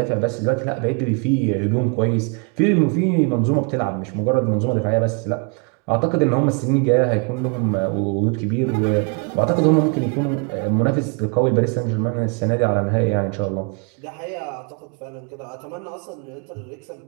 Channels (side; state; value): left; quieter; 34.6 dB